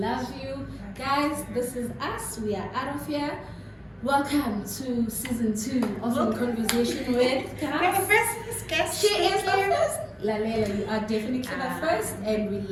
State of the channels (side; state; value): both; identical; correlation 1.00